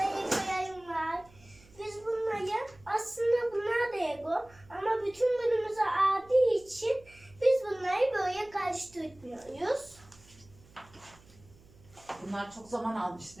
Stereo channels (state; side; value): noise; right; hum, 26 dB below the sound